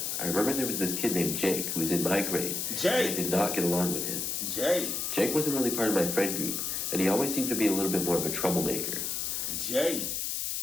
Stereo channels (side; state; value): left; noise; hiss, 1 dB below the sound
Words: I remember there was this kid named Jake who was in my grade. Jake? And I did not get along with him. Jake wasn't really part of my friend group, and he always seemed to be a little bit more of a troublemaker. Jake